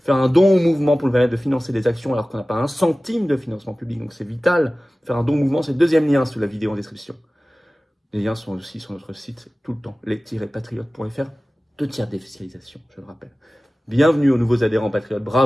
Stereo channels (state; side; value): normal; both; correlation 0.97